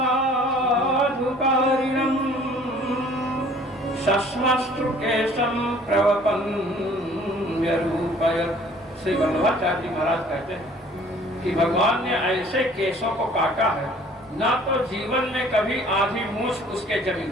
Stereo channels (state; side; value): normal; both; correlation 0.54